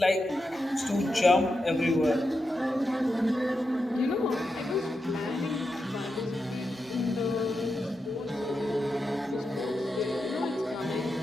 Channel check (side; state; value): both; normal; correlation 0.88